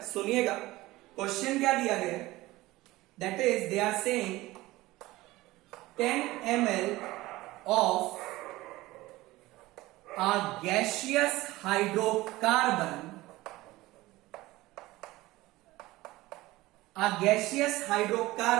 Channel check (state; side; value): quieter; left; 18.7 dB